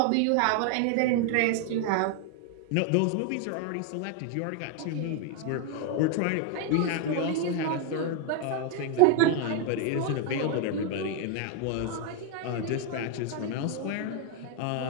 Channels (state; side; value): different; both; correlation 0.00